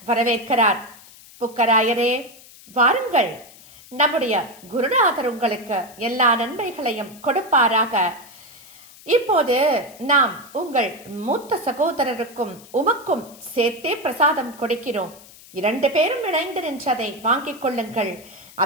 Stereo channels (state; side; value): noise; left; hiss, 21 dB below the sound